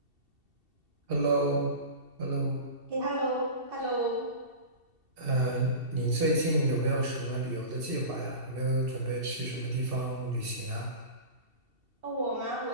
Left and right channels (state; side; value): late; left; 2.7 ms